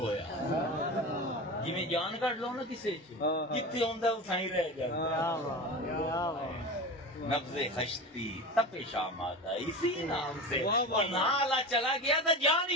جی میں جان کٹ لو نا کسے جتنے ہوندا اتھائی رہ جائے نبض خشتی تپش آمادہ اسی نام سے اور نالا چلا گیا تو جان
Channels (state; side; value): normal; both; correlation 0.28